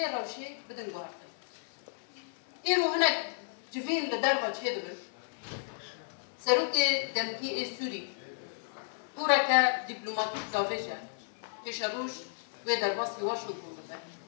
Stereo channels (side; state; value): right; silent; 56 dB below the other